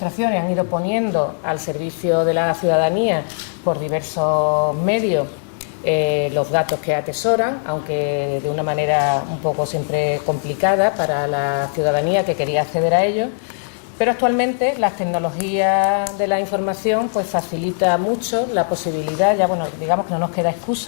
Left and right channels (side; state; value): right; silent; digital silence